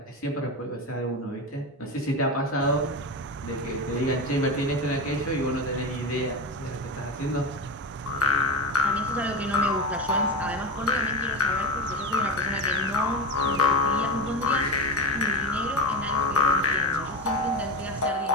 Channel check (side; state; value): both; normal; correlation 0.22